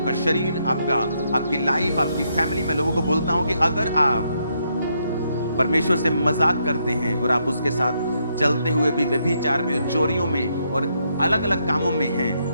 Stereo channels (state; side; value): inverted; both; correlation -0.77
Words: शरीर, आपकी लाइफ, आपकी फैमिली। मैं लोगों को बोलता हूं कि अगर आप परमेश्वर से मजाक करते हैं और आप उसके साथ चलते हुए भी व्यभिचार में, चोरियों में और अलग अलग कामों में हैं,